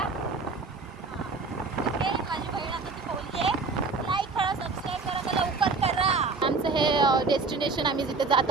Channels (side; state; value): left; quieter; 4.2 dB